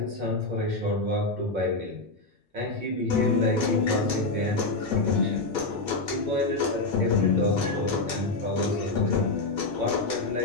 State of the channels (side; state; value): right; quieter; 3.2 dB